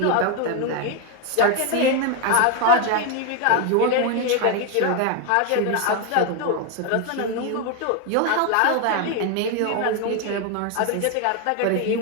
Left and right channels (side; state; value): both; different; correlation 0.01